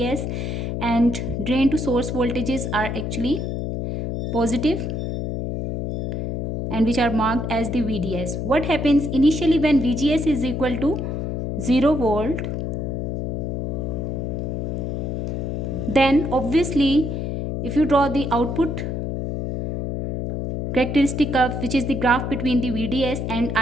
and drain to source voltages are actually positive and which are marked as the VDS. What happens initially when VGS is equal to 0 volt? Then obviously if you draw the output characteristic curve, which is the graph between the VDS and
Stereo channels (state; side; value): noise; left; hum, 2 dB below the sound